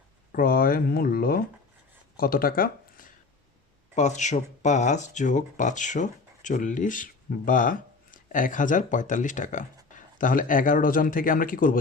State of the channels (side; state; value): right; quieter; 4.1 dB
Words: ক্রয় মূল্য কত টাকা? 505 যোগ 540 বা 1045 টাকা। তাহলে 11 ডজন থেকে আমরা কি করব?